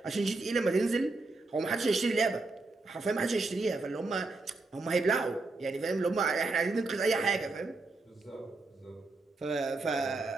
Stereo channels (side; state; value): left; quieter; 3.4 dB